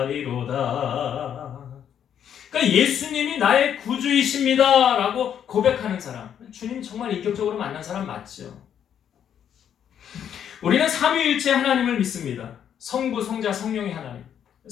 그러니까 예수님이 나의 구주이십니다 라고 고백하는 사람, 주님 정말 인격적으로 만난 사람 맞죠? 우리는 삼위일체 하나님을 믿습니다. 성부, 성자, 성령의 하나님.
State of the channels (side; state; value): right; quieter; 9.1 dB